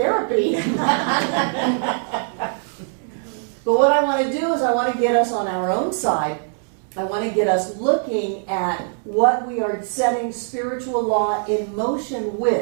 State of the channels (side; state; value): left; silent; 64 dB below the other